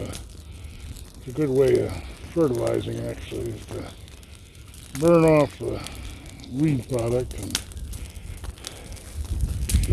a good way of fertilizing, actually, is to burn off the weed product. And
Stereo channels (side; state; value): both; identical; correlation 1.00